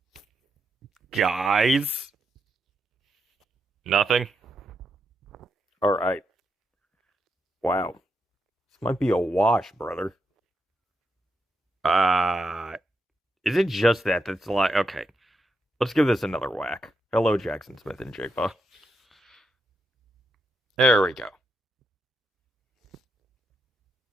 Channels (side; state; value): both; normal; correlation 0.83